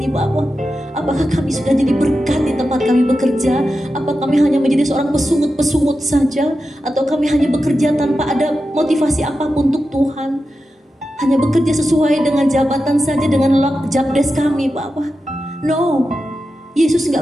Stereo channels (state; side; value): normal; both; correlation 0.91